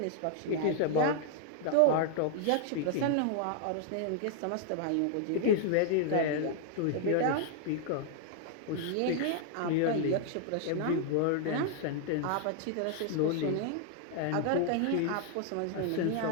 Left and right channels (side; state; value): both; different; correlation 0.00